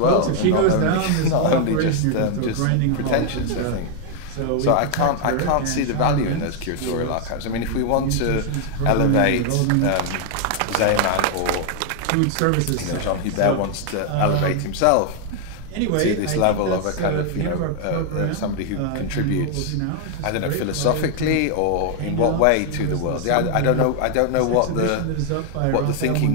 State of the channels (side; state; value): both; different; correlation 0.00